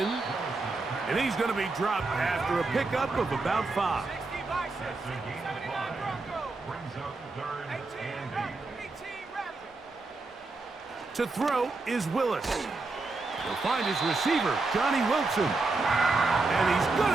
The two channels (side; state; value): left; quieter; 3.5 dB